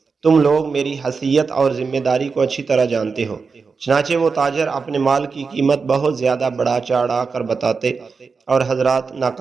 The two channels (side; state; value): left; quieter; 4.9 dB